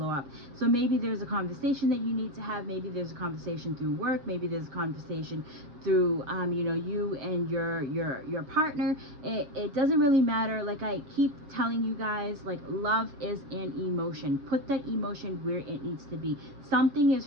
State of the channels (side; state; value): left; late; 7.1 ms